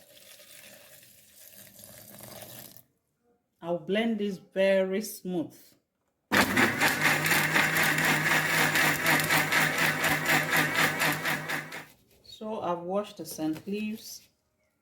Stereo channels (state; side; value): identical; both; correlation 1.00